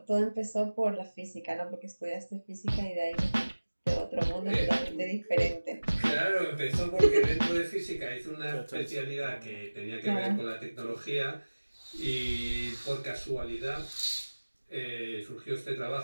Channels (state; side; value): inverted; both; correlation -1.00